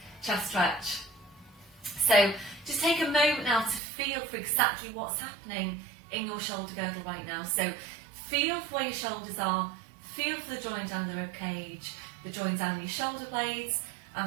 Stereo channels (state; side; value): drops out; left; at 3.8 s